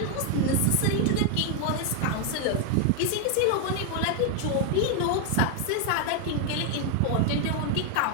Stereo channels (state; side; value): different; both; correlation 0.00